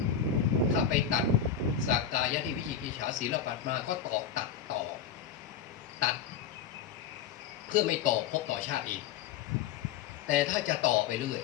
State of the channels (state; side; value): quieter; right; 8.0 dB